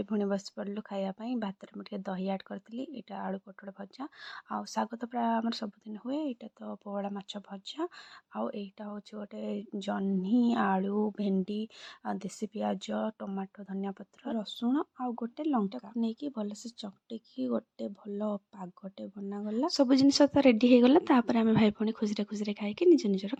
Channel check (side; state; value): both; identical; correlation 1.00